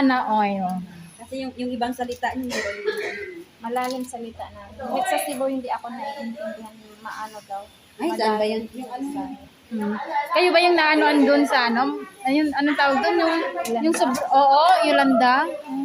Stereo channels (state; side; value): identical; both; correlation 1.00